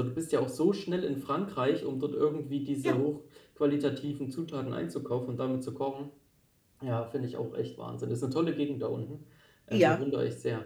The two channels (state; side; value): identical; both; correlation 1.00